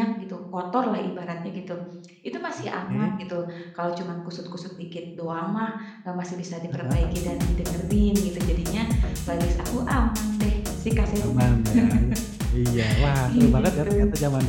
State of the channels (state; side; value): identical; both; correlation 1.00